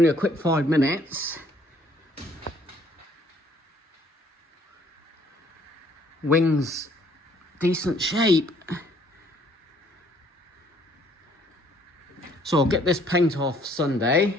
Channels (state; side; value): normal; both; correlation 0.62